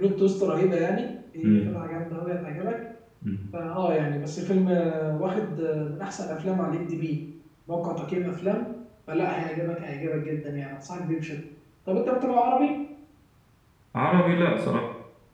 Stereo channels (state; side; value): identical; both; correlation 1.00